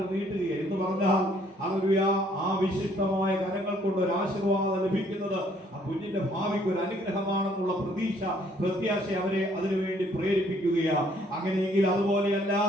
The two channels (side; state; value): both; normal; correlation 0.64